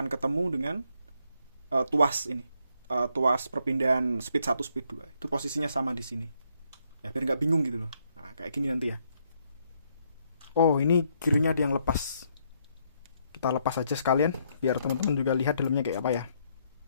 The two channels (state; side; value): inverted; both; correlation -0.73